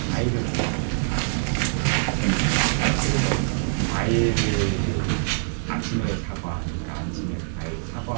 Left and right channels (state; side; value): silent; left; digital silence